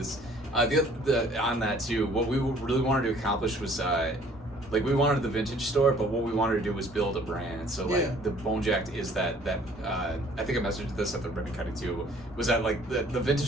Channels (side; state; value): both; normal; correlation 0.56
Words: On that too, what we really wanted to accomplish was we wanted the vintage store, but what we wanted to do was build a brand. So the Bonejacked is that I think I messaged this at the ribbon cutting too. Was that like the